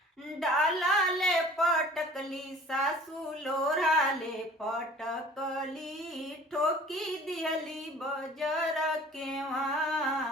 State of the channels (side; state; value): both; normal; correlation 0.48